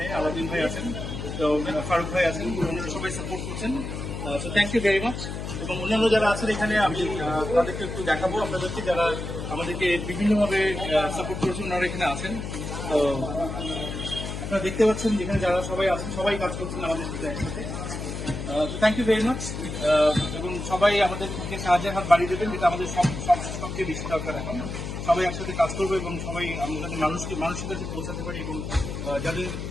আলাদিন ভাই আছেন, তো ফারুক ভাই আছেন, ওনারা সবাই সাপোর্ট করছেন। So thank you very much. এবং অন্যান্য যারা আছেন এখানে আমি তাদেরকে একটু দেখাবো আপনাদেরকে, যারা আমাদেরকে বিভিন্নভাবে সাপোর্ট করেছেন, ওনারা এখানে আছেন। তো আপনারা দেখতে পাচ্ছেন যেখানে যারা সবাই আছেন, সবাই কাজ করছেন আমাদের সাথে একসাথে। Thank you very much. এবং সবাই আমাদেরকে সাহায্যের হাত বাড়িয়ে দেবেন, যেটা আমাদের সবচেয়ে বেশি দরকার এখন। সবাই একসাথে কাজ করবো এবং সবাই আমরা যাতে মানুষের কাছে পৌঁছাতে পারি, এবং যাদের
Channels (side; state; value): left; noise; hum, 6 dB below the sound